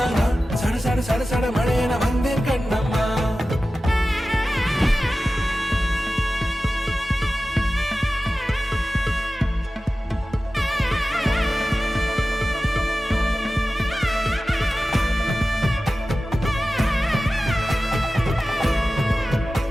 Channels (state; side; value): normal; both; correlation 0.95